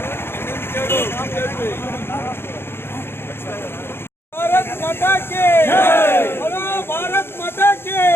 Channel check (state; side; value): late; right; 0.11 ms